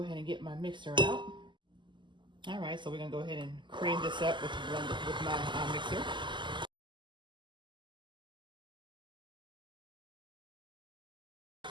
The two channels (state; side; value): late; left; 0.23 ms